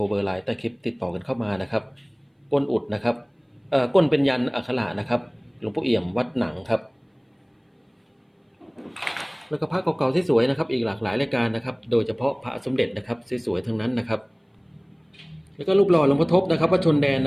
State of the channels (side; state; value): both; identical; correlation 1.00